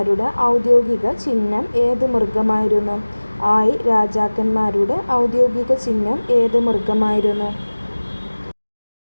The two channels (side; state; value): both; inverted; correlation -1.00